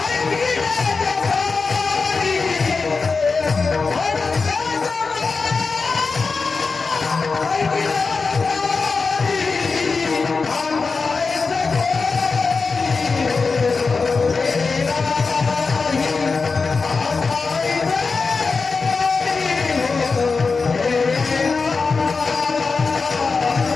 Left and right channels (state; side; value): quieter; right; 4.5 dB